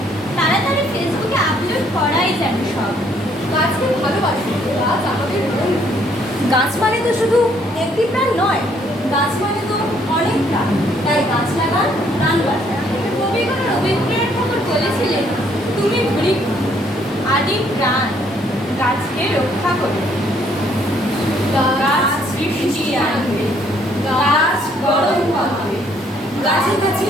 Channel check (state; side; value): normal; both; correlation 0.66